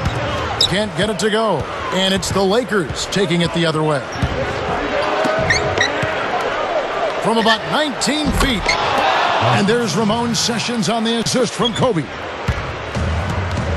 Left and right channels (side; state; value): both; identical; correlation 1.00